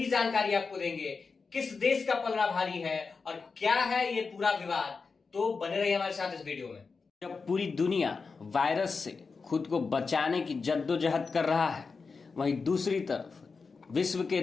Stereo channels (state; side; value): quieter; right; 4.7 dB